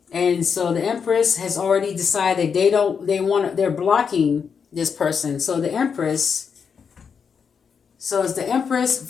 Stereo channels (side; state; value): right; quieter; 6.4 dB